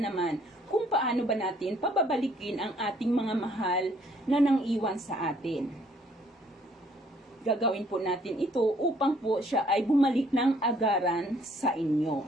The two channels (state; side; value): normal; both; correlation 0.63